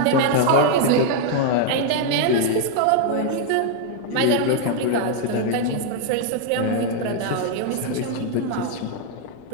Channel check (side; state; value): both; different; correlation 0.00